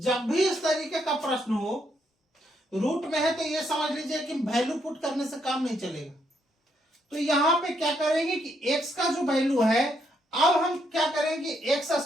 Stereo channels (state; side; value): normal; both; correlation 0.75